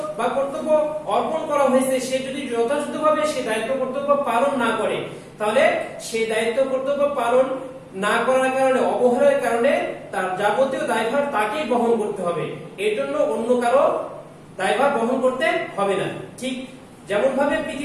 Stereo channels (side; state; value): both; identical; correlation 1.00